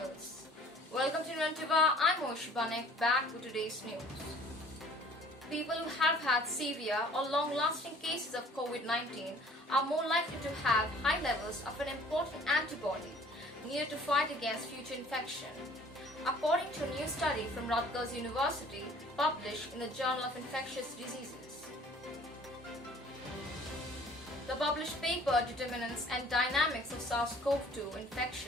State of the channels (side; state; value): both; normal; correlation 0.52